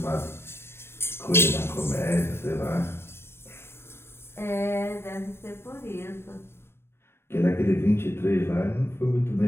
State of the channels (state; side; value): late; right; 0.12 ms